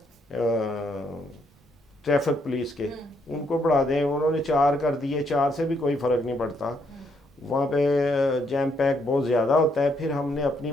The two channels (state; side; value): normal; both; correlation 0.74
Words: ट्रैफिक पुलिस के, उनको बढ़ा दें। उन्होंने 4 कर दिए, 4 से भी कोई फ़र्क नहीं पड़ता, वहाँ पे जैम पैक बहुत ज़्यादा होता है। फिर हमने अपनी